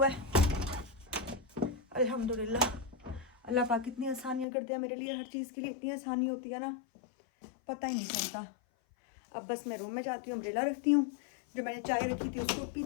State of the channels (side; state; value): right; drops out; at 4.5 s